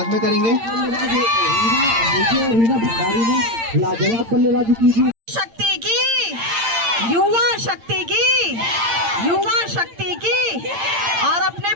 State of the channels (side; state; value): left; late; 8.8 ms